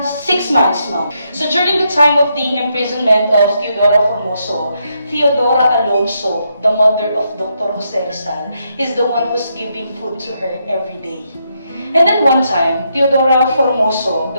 6 months, ma'am. So during the time of the imprisonment of Teodora Formoso, Teodora Alonso, the mother of Dr. Jose Rizal, is the one who's giving food to her every day. And then one time, Teodora Formoso,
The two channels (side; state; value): both; inverted; correlation -0.79